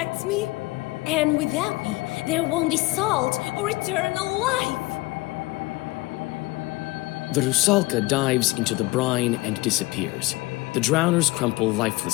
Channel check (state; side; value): quieter; right; 21.6 dB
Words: me. And without me, there won't be salt or eternal life. The Rusalka dives into the brine and disappears. The drowners crumple